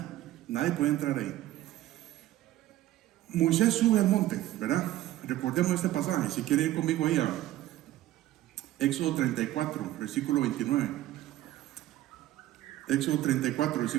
podía entrar ahí. Moisés sube al monte, ¿verdad? Recordemos este pasaje. Si quieren ir conmigo ahí a Éxodo 34, versículo 29. Éxodo 34,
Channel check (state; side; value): quieter; left; 14.6 dB